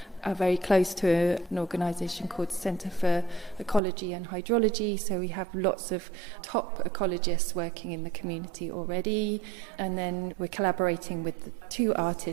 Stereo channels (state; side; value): drops out; left; at 3.8 s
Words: are very close to an organisation called Centre for Ecology and Hydrology, so we have lots of top ecologists working in the community already, and then we're collaborating with the two